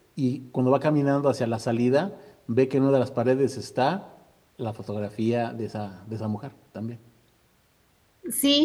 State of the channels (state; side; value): identical; both; correlation 1.00